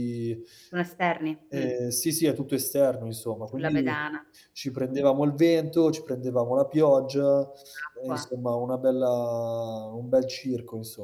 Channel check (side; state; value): both; identical; correlation 1.00